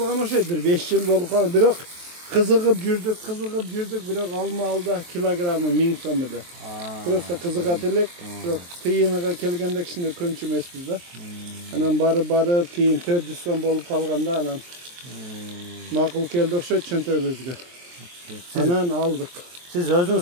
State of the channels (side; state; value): left; late; 23 ms